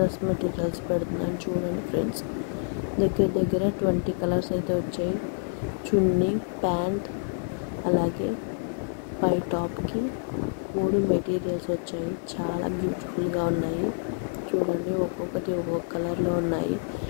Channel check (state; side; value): silent; right; 57 dB below the other